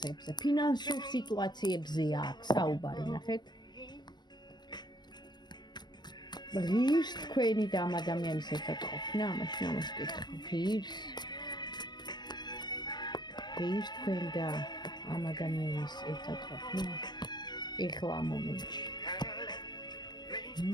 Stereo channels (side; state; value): right; late; 0.21 ms